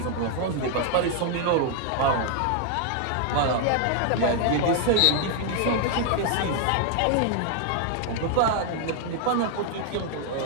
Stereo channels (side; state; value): both; different; correlation 0.00